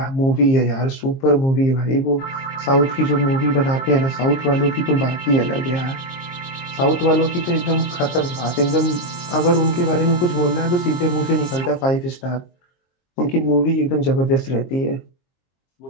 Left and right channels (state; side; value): late; right; 23 ms